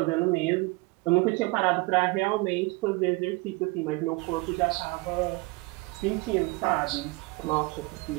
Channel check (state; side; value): quieter; left; 24.8 dB